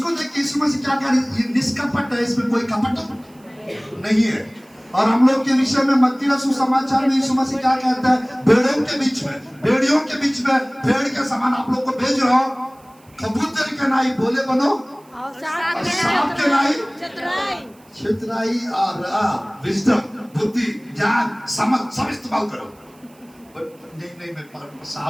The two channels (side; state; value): right; noise; hiss, 30 dB below the sound